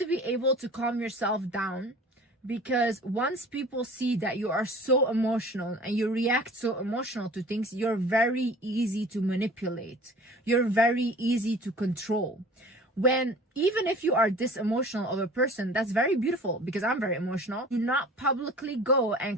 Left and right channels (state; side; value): normal; both; correlation 0.44